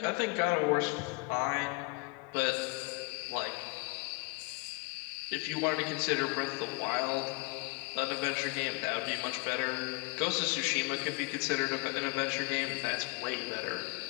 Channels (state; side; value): quieter; right; 28.6 dB